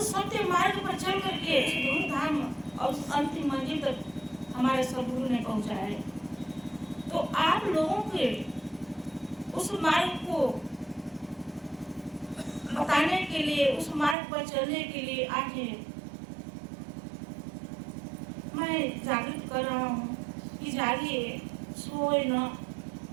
सत्य मार्ग पर चल करके उस दूर धाम और उस अंतिम मंजिल तक हमारे सदगुरु ने पहुँचाया है। तो आप लोगों के उस मार्ग को बताने के लिए, उस मार्ग पर चलने के लिए आज मैं जागृत कर रहा हूँ कि जागिए, सोए न।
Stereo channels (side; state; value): left; drops out; at 14.2 s